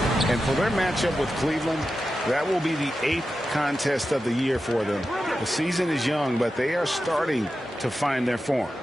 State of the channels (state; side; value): normal; both; correlation 0.91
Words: And for their matchup with Cleveland, that will be the 8th contest of the year for them. The season is young, but they are starting to find their form.